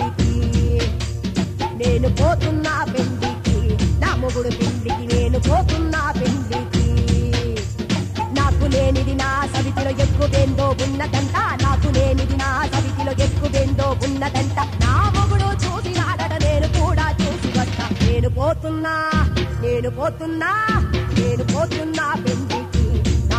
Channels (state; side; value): identical; both; correlation 1.00